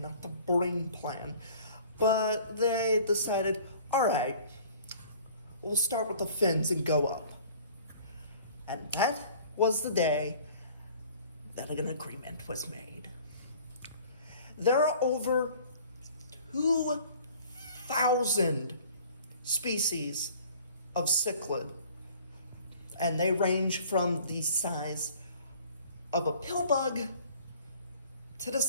not the brain plan. But they decided, all right, we'll start with the fins and go up. And that was the day that an agreement was made. There are over 2,000 species of cichlid. And they range from the size of a pill bug to the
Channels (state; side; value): inverted; both; correlation -0.50